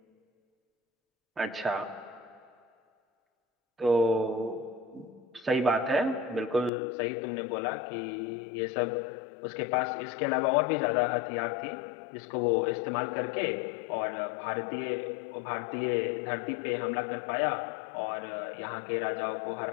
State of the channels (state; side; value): drops out; right; at 6.7 s